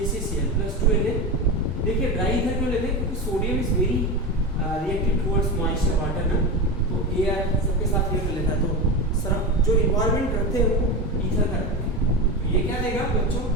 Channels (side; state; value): both; normal; correlation 0.20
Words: प्लस 2Na, देखिए ड्राई ईथर क्यों लेते हैं, क्योंकि sodium is very reactive towards moisture water ना, तो एयर सबके साथ ये कर लेता है, तो सरफ जो इन्वायरमेंट रखते हैं वो ईथर का रखते हैं। तो ये क्या देगा बच्चों,